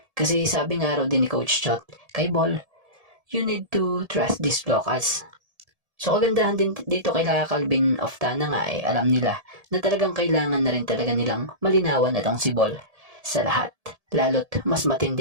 Kasi sabi nga raw din ni Coach Chot kay Bol, you need to trust these locals. So kagandahan din dito kay Calvin Optana nga alam nila na talagang kailangan na rin talaga nilang malinawan itong si Bol sa lahat. Lalo't mas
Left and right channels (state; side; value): late; left; 1.7 ms